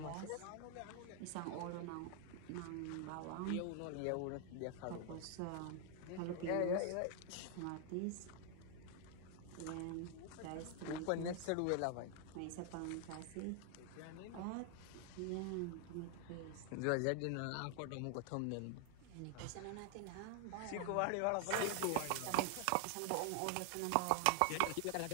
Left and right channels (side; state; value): both; different; correlation 0.00